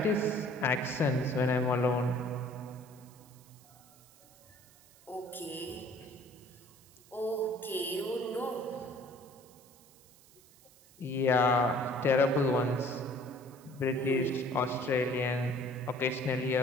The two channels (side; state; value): right; noise; hiss, 26 dB below the sound